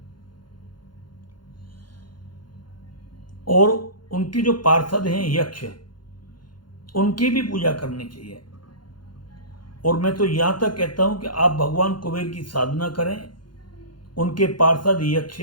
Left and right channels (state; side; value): late; right; 0.71 ms